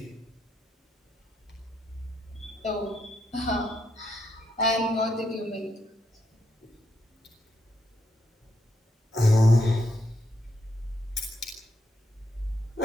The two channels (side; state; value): both; normal; correlation 0.79